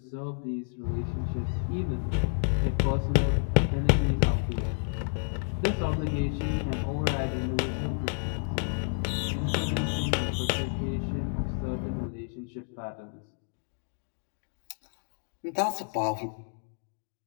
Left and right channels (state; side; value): silent; right; digital silence